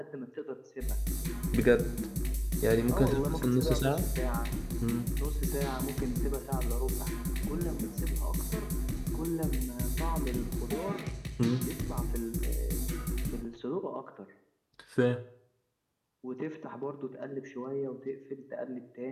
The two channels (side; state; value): both; identical; correlation 1.00